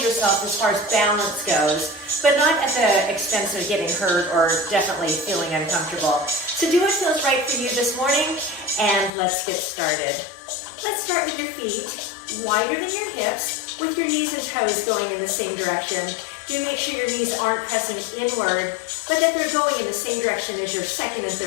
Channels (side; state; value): right; drops out; at 9.1 s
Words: yourself as far as balance goes, but not at the expense of getting hurt or definitely feeling uncomfortable. So do what feels right for you this morning, and let's get started. Let's start with your feet, wider than your hips, with your knees and toes going in the same direction. Do make sure your knees aren't pressing inward, but that they're going in the same direction as your second and